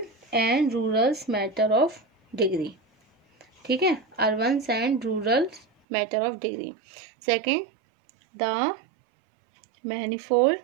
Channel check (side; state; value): left; drops out; at 5.7 s